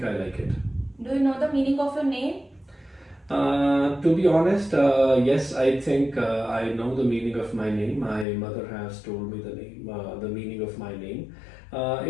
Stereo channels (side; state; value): right; drops out; at 8.2 s